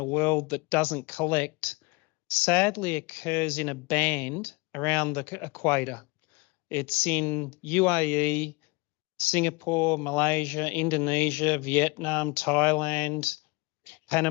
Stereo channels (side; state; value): right; quieter; 26.7 dB